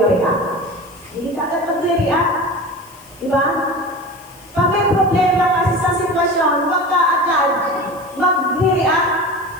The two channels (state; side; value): noise; left; hiss, 25 dB below the sound